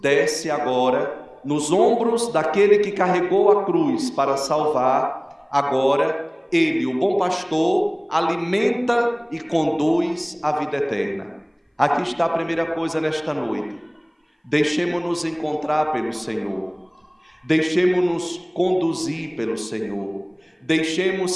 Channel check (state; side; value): identical; both; correlation 1.00